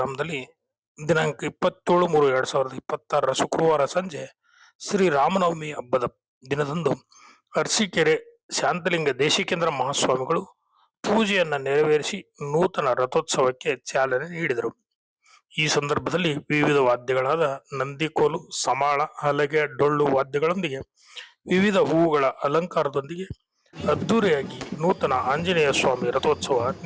ದಿನಾಂಕ 27/3/2026 ಶುಕ್ರವಾರ ಸಂಜೆ ಶ್ರೀ ರಾಮನವಮಿ ಹಬ್ಬದ ದಿನದಂದು ಅರಸೀಕೆರೆ ಶಾಂತಲಿಂಗ ದೇಶಿಕೇಂದ್ರ ಮಹಾಸ್ವಾಮಿಗಳು ಪೂಜೆಯನ್ನ ನೆರವೇರಿಸಿ ನೂತನ ರಥೋತ್ಸವಕ್ಕೆ ಚಾಲನೆ ನೀಡಿದರು. ಈ ಸಂದರ್ಭದಲ್ಲಿ ವಿವಿಧ ವಾದ್ಯಗಳಾದ ನಂದಿಕೋಲು, ಸಮಾಳ, ಹಲಗೆ, ಡೊಳ್ಳು ವಾದ್ಯಗಳೊಂದಿಗೆ ವಿವಿಧ ಹೂವುಗಳ ಅಲಂಕಾರದೊಂದಿಗೆ ಅದ್ದೂರಿಯಾಗಿ ನೂತನ ಆಂಜನೇಯ ಸ್ವಾಮಿ ರಥೋತ್ಸವ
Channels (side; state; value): both; identical; correlation 1.00